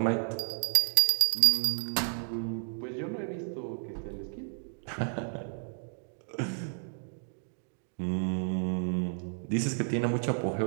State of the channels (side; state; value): left; silent; 57 dB below the other